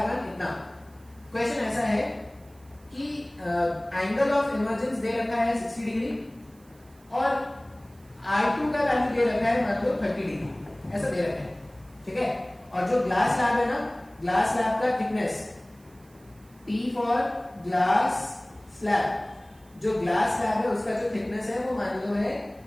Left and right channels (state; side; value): noise; right; hiss, 30 dB below the sound